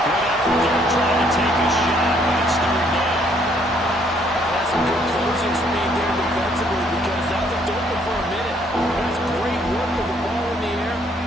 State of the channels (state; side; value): normal; both; correlation 0.66